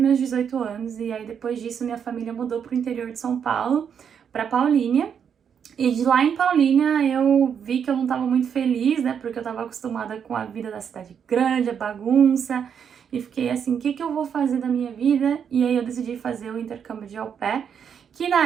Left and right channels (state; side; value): quieter; left; 7.6 dB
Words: 18 anos, e aí depois disso minha família mudou pro interior de São Paulo, para Paulínia. E de lá em Paulínia eu vi que eu não estava muito feliz, né? Porque eu estava acostumada com a vida da cidade grande, a bagunça. E fiquei assim, o que que eu vou fazer da minha vida? E aí eu decidi fazer o intercâmbio de au pair, que